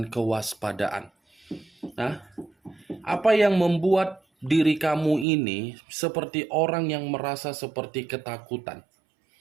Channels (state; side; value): drops out; left; at 5.2 s